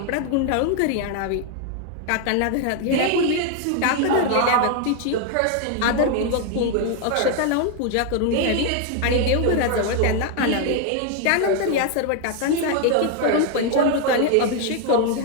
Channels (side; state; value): both; different; correlation 0.00